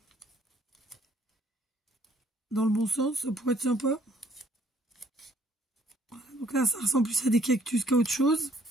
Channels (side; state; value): both; normal; correlation 0.63